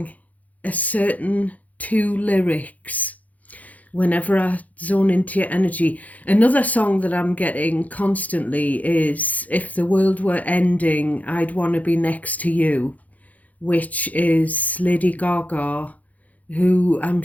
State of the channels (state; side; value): late; right; 0.075 ms